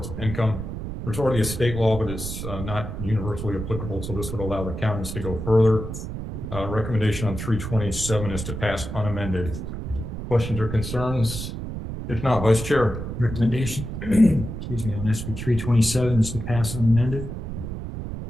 of income. There's already a state law, but it's not universally applicable, so this would allow the counties to go further. Recommendation on 327 is to pass unamended. Questions or concerns? If not, Vice Chair. Recommendation, excuse me, on SB 327 is to pass unamended.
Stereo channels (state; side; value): noise; right; rumble, 7 dB below the sound